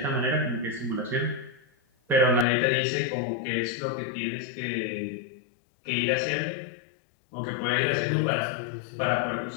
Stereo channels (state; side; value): drops out; right; at 2.5 s